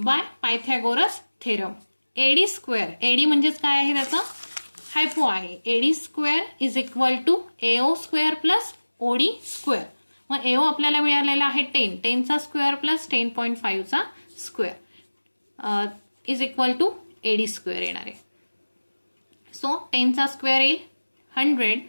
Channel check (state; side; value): inverted; both; correlation -1.00